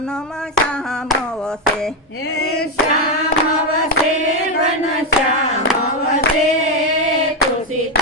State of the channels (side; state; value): both; normal; correlation 0.07